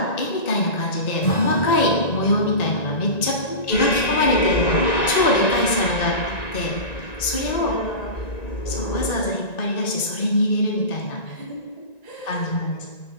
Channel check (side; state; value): right; late; 1.9 ms